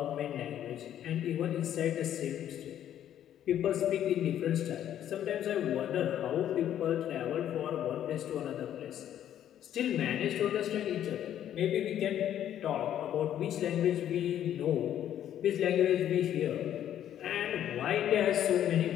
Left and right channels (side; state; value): right; quieter; 10.8 dB